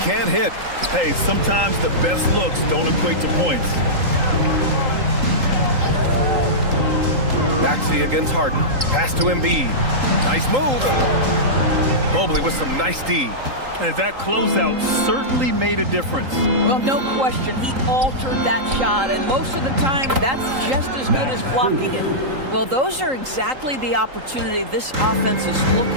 can't hit. Hey, sometimes the best looks don't equate to points. Maxey against Harden. Pass to Embiid. Nice move. Mobley with some nice D. And that closeout certainly made a difference. Well, no question. He altered that shot, and most of the time, that's just as good as blocking it. Well, those are exactly the opportunity this offense is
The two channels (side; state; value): left; late; 3.8 ms